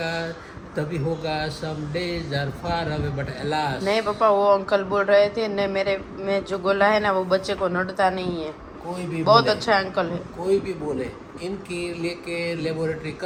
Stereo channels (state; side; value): identical; both; correlation 1.00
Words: तभी होगा। Some days are far away but alas. नहीं पापा वो अंकल बोल रहे थे न, मेरे में जो गोला है ना वो बच्चे को नड़ता नहीं है। कोई भी बहुत बोले, अच्छा अंकल है। कोई भी बोले इनकी लेके लेबोरेटरी